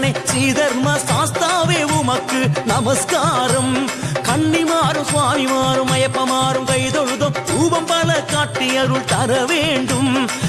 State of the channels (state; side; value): identical; both; correlation 1.00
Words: ஸ்ரீதர்ம சாஸ்தாவே உமக்கு நமஸ்காரம் கன்னிமாறும் சுவாமிமாறும் ஐயப்பமாறும் கைதொழுதும் ரூபம் பல காட்டி அருள் தர வேண்டும்